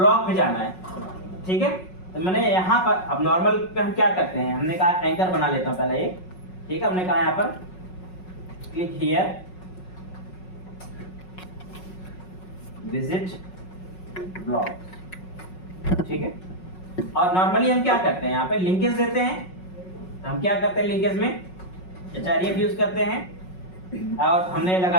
पे जाना है, ठीक है। तो मैंने यहाँ पर अब नॉर्मल पे हम क्या करते हैं, हमने कहा एंकर बना लेता हूँ पहले ये, ठीक है। हमने कहा यहाँ पर क्लिक हियर विजिट ब्लॉग, ठीक है। और नॉर्मली हम क्या करते हैं, यहाँ पे लिंकेज देते हैं। तो हम क्या करते हैं, लिंकेज में href यूज करते हैं और हमने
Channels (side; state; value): right; late; 5.4 ms